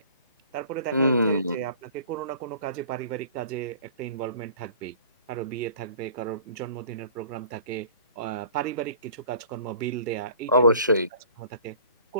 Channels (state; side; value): inverted; both; correlation -0.50